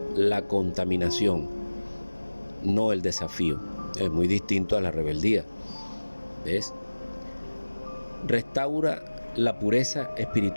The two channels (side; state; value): both; inverted; correlation -1.00